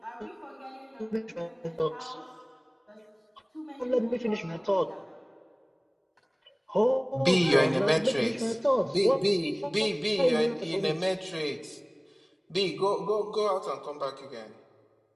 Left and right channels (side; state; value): both; identical; correlation 1.00